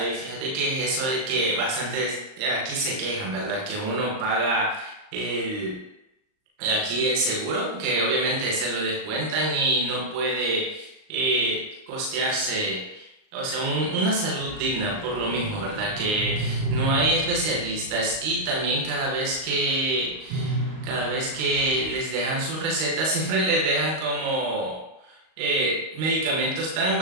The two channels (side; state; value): left; late; 38 ms